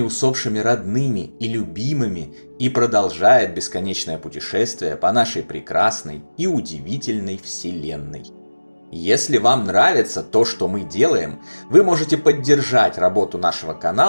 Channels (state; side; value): inverted; both; correlation -1.00